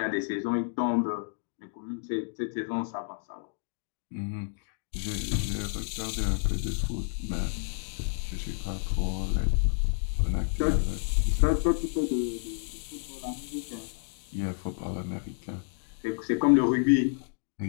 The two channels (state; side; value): silent; right; digital silence